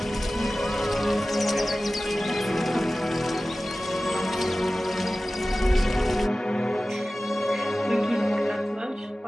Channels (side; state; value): both; normal; correlation 0.96